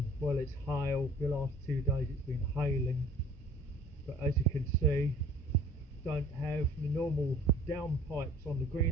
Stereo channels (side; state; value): both; normal; correlation 0.50